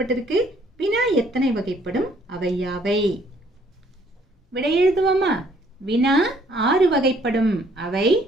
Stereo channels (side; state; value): both; normal; correlation 0.63